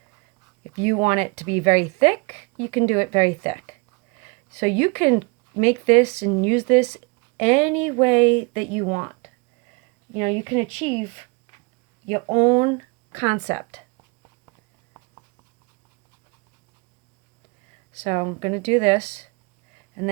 If you want it to be very thick, you can do it very thick. So you can make this and use this any way that you want. You can achieve your own concept. So I'm going to do this, and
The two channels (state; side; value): quieter; left; 29.6 dB